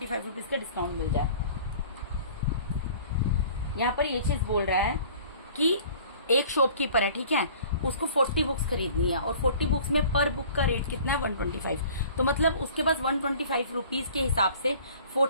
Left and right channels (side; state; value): both; inverted; correlation -0.48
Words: रुपीज का डिस्काउंट मिल जाए। यहाँ पर ये चीज बोल रहा है कि एक शॉपकीपर है, ठीक है, उसको 40 बुक्स खरीदनी है और 40 बुक्स में पर बुक का रेट कितना है 125। तो मतलब उसके पास 125 रुपीज के हिसाब से